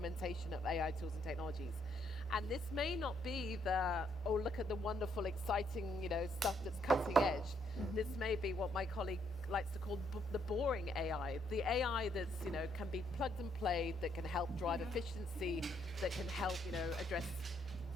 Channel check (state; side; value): normal; both; correlation 0.72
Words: of AI tools and technologies. And this may not be look at the wonderful, exciting, stuff that's cutting edge. This may be what my colleague likes to call the boring AI. The AI that's, can be plugged and played, that can help drive efficiency, that can help, address